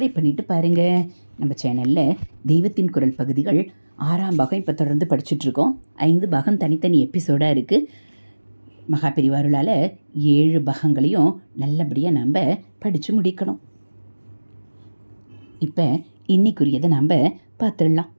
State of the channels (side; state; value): both; inverted; correlation -1.00